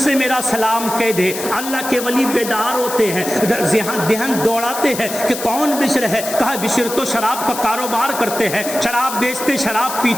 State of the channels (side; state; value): left; noise; hiss, 8 dB below the sound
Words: سے میرا سلام کہہ دے. اللہ کے ولی بیدار ہوتے ہیں, دہن دوڑاتے ہیں کہ کون بشر ہے. کہا بشر تو شراب کا کاروبار کرتے ہیں, شراب بیچتے, شراب